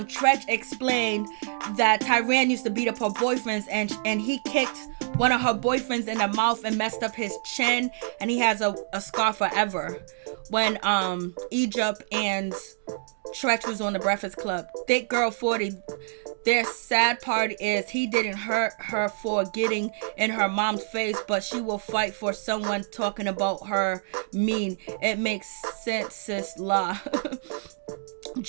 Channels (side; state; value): left; silent; digital silence